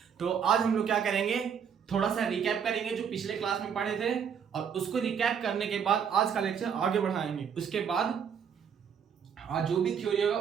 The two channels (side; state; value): left; quieter; 7.4 dB